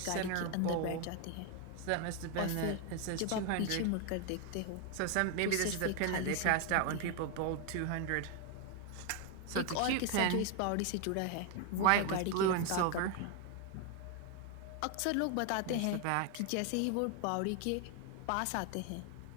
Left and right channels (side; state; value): both; different; correlation 0.01